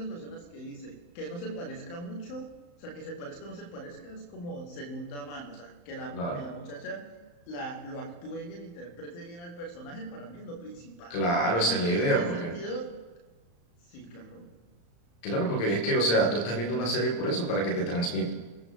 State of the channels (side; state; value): right; late; 35 ms